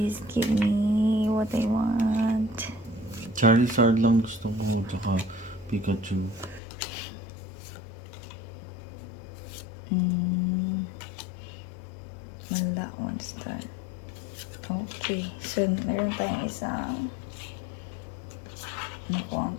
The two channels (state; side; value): drops out; right; at 6.6 s